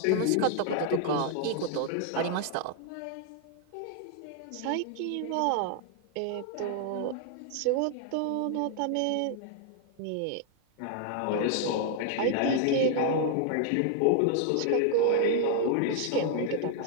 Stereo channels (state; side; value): different; both; correlation 0.00